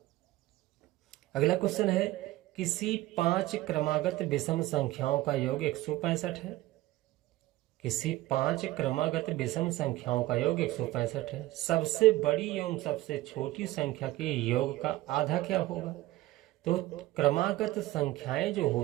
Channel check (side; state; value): left; quieter; 17.2 dB